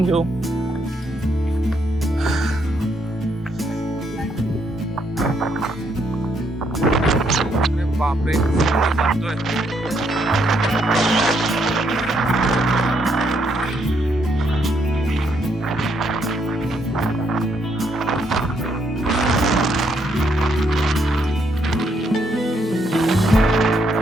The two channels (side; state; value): both; normal; correlation 0.74